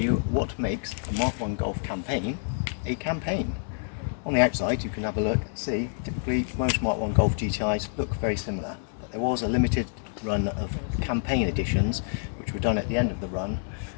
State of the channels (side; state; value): right; silent; digital silence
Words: what makes a Mark 1 Golf campaign a campaign. On the outside you can have a look and see, typically most Mark 1 Golf GTIs look very similar, but there was a limited run of campaign editions which were done at the end of the run,